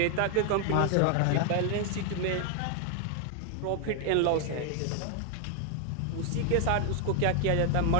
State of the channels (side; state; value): both; different; correlation 0.00